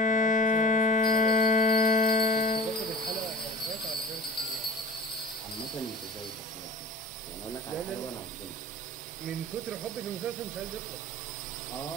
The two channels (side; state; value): both; normal; correlation 0.39